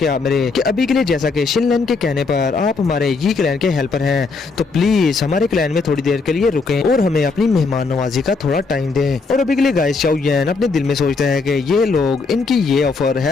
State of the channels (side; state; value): right; quieter; 4.3 dB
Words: कि शिनलैन के कहने पर आप हमारे यी क्लैन के हेल्पर हैं, तो प्लीज हमारे क्लैन में थोड़ी देर के लिए रुकें और हमें अपनी मेहमान नवाजी का थोड़ा टाइम दें। और अभी के लिए गाइस शाओयन अपने दिल में सोचता है कि ये लोग इनकी ये ऑफर